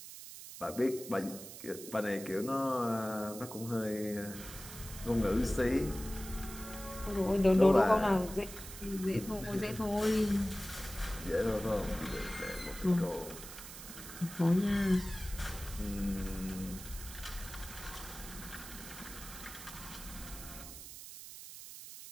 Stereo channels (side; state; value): right; noise; hiss, 12 dB below the sound